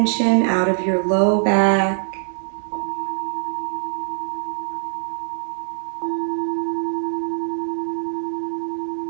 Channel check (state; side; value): silent; left; 64 dB below the other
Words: out of your low back.